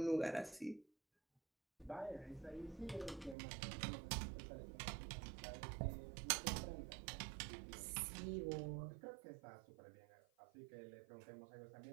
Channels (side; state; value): left; drops out; at 3.4 s